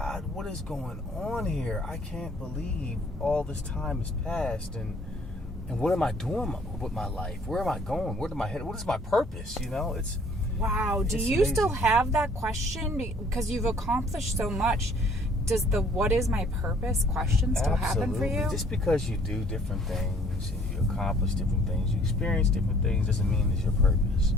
what is going on here? I can't believe all this time has passed, and what am I doing with my life? Where am I going? Where am I headed? What is my purpose? You know, it's wow. Do you amazing. Still have that question because you've accomplished so much? Does the "what is my purpose" question still happen for you? Just because you do different things and you accomplish different things, you experience different things, doesn't mean it's your purpose.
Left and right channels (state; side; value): normal; both; correlation 0.58